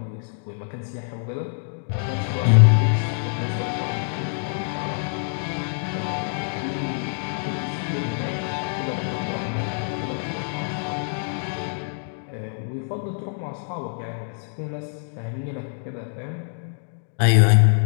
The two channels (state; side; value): silent; right; digital silence